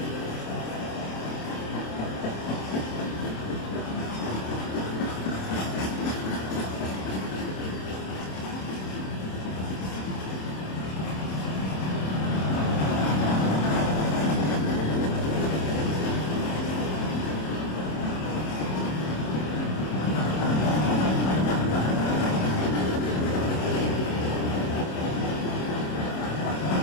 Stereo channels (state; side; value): late; right; 27 ms